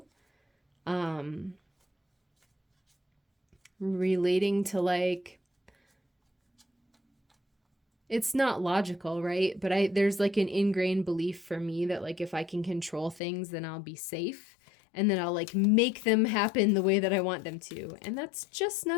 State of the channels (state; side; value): drops out; right; at 13.2 s